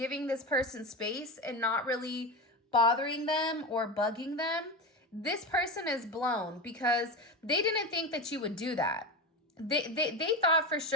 this person space and not really bothering them or bugging them, this person is blown, because they didn't think that you would do that. They thought for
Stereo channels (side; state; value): both; normal; correlation 0.20